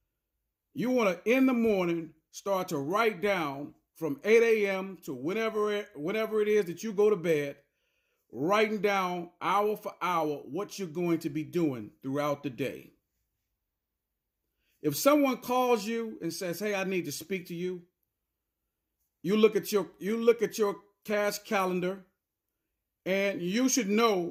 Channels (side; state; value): both; identical; correlation 1.00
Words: You want to, in the morning, start to write down from 8 a.m. to whenever it is that you go to bed, writing down hour for hour what you're going to be doing throughout the day. If someone calls you and says, "Hey, I need to speak to you," you look at your cash calendar, and you should